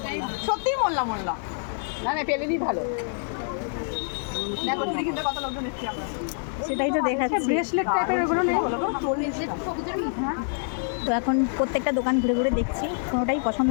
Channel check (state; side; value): silent; right; digital silence